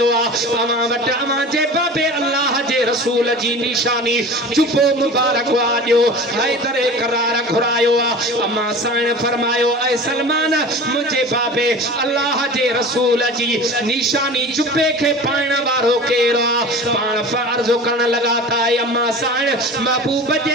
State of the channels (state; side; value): normal; both; correlation 0.36